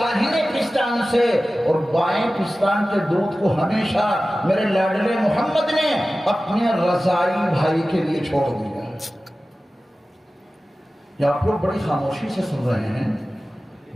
پستان سے، اور بائیں پستان کے دودھ کو ہمیشہ میرے لاڈلے محمد نے اپنے رضائی بھائی کے لیے چھوڑ دیا۔ یا آپ لوگ بڑی خاموشی سے سن رہے ہیں،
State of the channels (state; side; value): normal; both; correlation 0.96